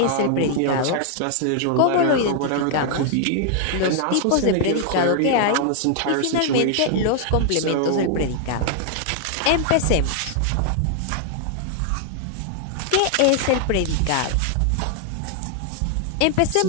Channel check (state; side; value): different; both; correlation 0.00